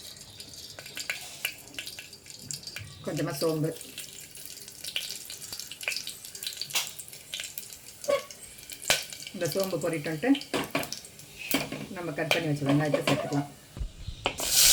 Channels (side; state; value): both; identical; correlation 1.00